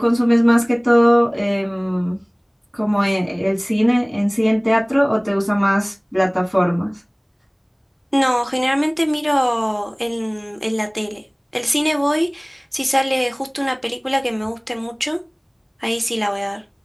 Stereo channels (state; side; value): identical; both; correlation 1.00